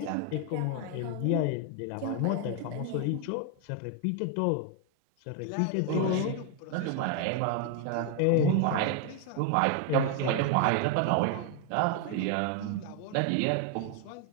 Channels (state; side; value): different; both; correlation 0.01